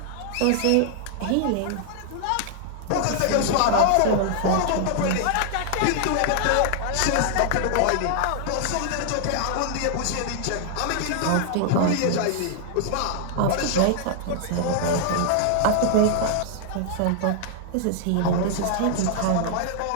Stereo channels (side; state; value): both; different; correlation 0.00